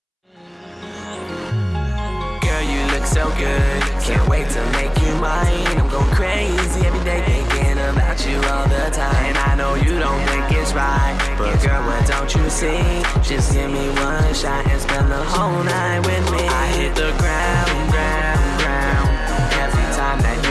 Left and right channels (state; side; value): identical; both; correlation 1.00